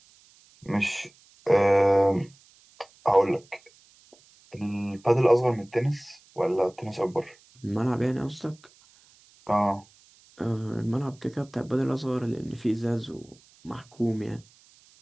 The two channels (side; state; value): right; noise; hiss, 29 dB below the sound